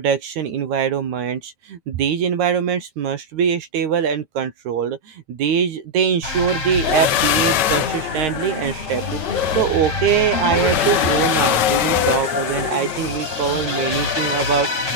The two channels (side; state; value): left; late; 9.3 ms